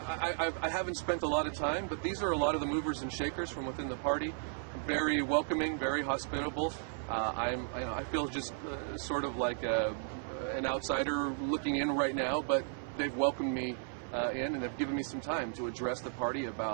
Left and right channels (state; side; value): silent; left; 55 dB below the other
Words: I haven't spent a lot of time, but these are a lot of the movers and shakers from within the party. Very welcoming, very hospitable. I feel just sort of like an outsider looking in right now, but they've welcomed me in, and they've given me some time to address the party